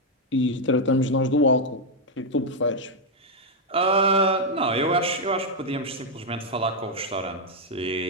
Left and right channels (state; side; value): normal; both; correlation 0.00